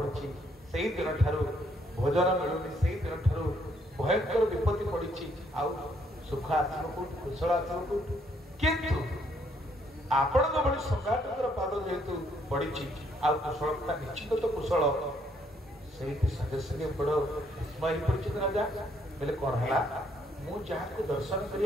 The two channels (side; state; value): both; normal; correlation 0.70